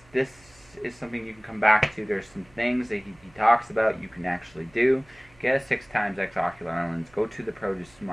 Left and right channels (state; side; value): noise; right; hum, 28 dB below the sound